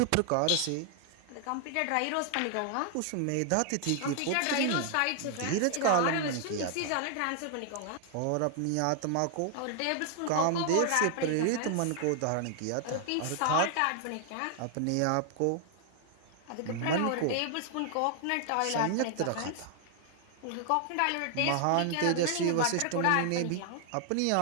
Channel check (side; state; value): both; different; correlation 0.00